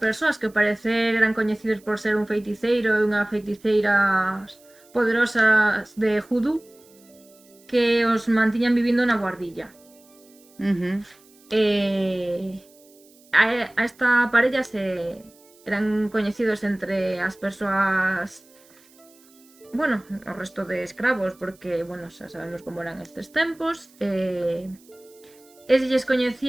que ao parecer eran coñecidos por ser un feiticeiro e unha feiticeiras poderosas de Judú, que os mantiñan vivindo na guardilla. A esta parella eran coñecidos entre as persoas, bueno, o resto de escravos, porque, bueno, xa sabemos como eran estes tempos, e se lles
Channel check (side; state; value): right; noise; hiss, 28 dB below the sound